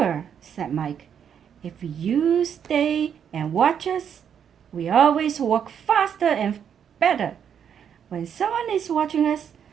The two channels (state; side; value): quieter; left; 8.2 dB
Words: said Mike. "If you stay and watch us, we always work faster and better when someone is watching us."